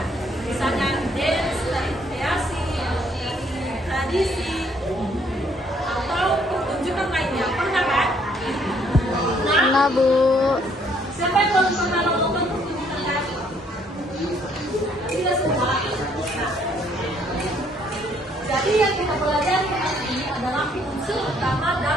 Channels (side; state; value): both; normal; correlation 0.66